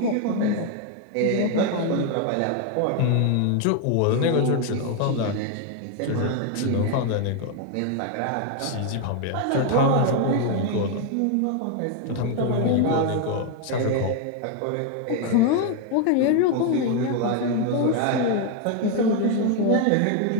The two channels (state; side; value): different; both; correlation 0.01